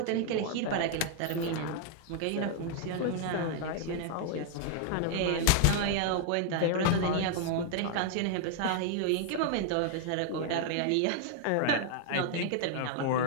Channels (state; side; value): different; both; correlation 0.00